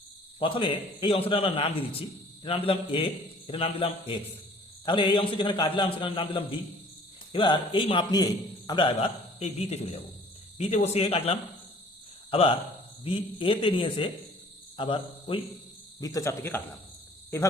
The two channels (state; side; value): normal; both; correlation 0.53